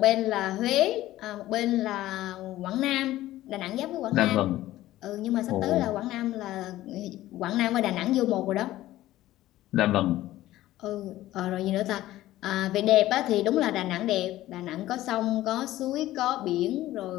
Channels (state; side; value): quieter; right; 15.3 dB